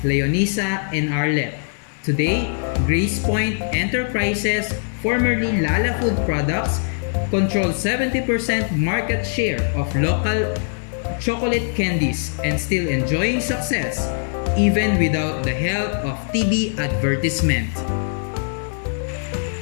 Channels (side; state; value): right; silent; 62 dB below the other